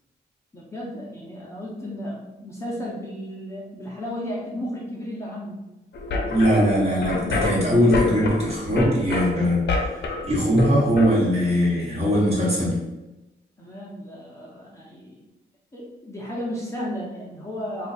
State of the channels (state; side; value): normal; both; correlation 0.68